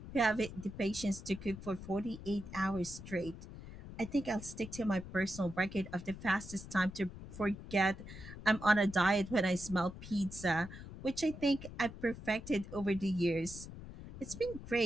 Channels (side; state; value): left; noise; rumble, 13 dB below the sound